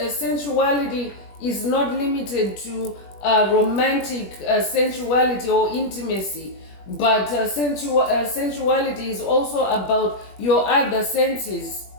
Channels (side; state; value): right; late; 21 ms